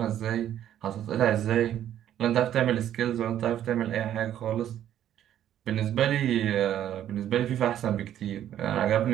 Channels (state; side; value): quieter; left; 11.1 dB